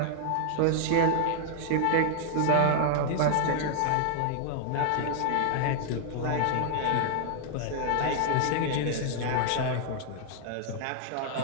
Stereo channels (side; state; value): both; different; correlation 0.00